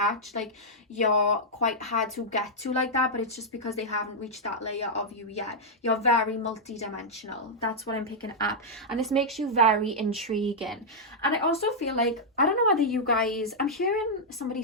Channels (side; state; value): both; normal; correlation -0.06